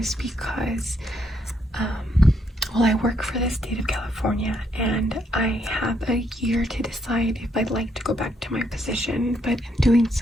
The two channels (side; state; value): both; normal; correlation 0.74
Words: because well, I work for the state of California, and I have a year to decide if I'd like to go back to my position, but in doing